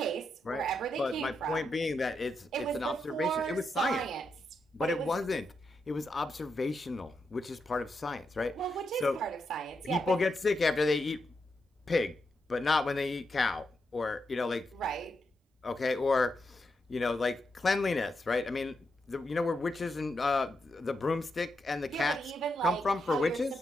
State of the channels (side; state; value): both; normal; correlation 0.84